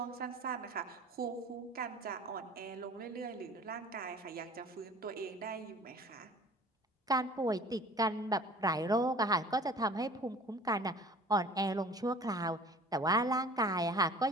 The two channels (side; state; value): both; normal; correlation 0.46